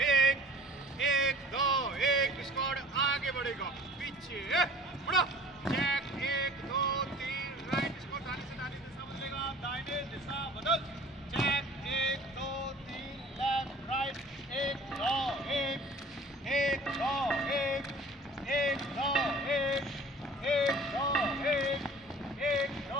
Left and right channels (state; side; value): normal; both; correlation 0.47